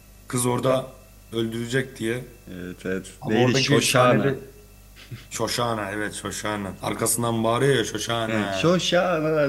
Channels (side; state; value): both; identical; correlation 1.00